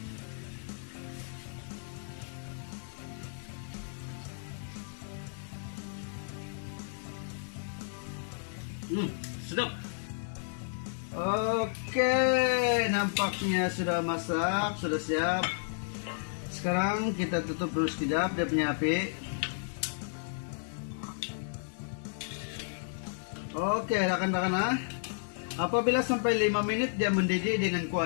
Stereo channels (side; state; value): right; silent; digital silence